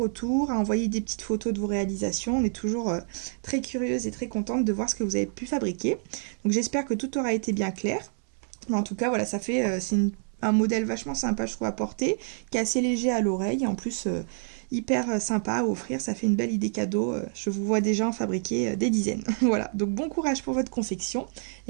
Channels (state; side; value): silent; left; 60 dB below the other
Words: à envoyer des petites photos de vos réalisations. On est toujours très curieuse et très contente de voir ce que vous avez pu fabriquer. Donc j'espère que tout aura été bien clair. Mais en tout cas, voilà, ça fait c'est un modèle vachement sympa, je trouve, à porter, qui est assez léger à l'oreille, en plus hyper sympa à offrir. Ça fait une belle idée cadeau. Je vous vois déjà en fabriquer des dizaines. Voilà, donc bon courage pour votre confection